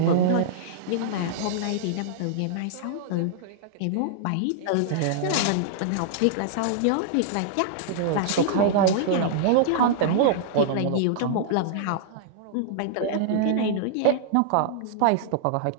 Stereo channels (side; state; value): both; different; correlation -0.01